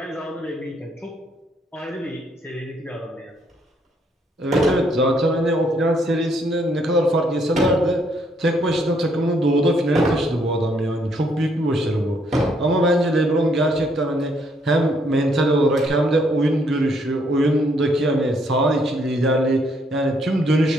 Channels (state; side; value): normal; both; correlation 0.70